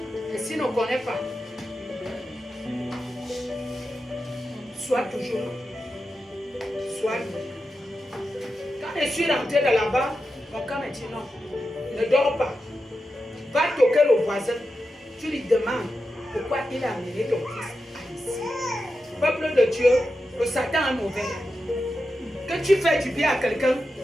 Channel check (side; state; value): both; normal; correlation 0.90